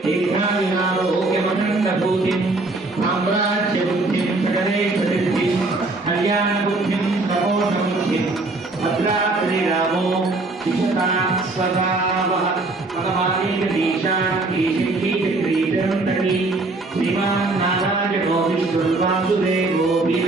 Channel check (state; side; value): quieter; left; 3.2 dB